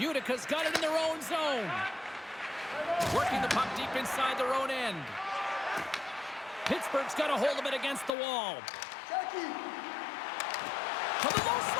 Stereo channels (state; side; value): drops out; right; at 8.1 s